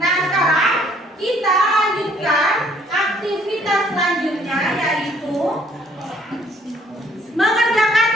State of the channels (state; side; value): normal; both; correlation 0.62